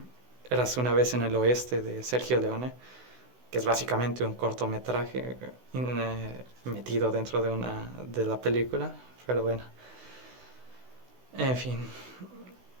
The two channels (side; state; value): left; late; 16 ms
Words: Érase una vez en el oeste, de Sergio Leone, que es básicamente un cortometraje metido dentro de la película. Pero bueno, en fin,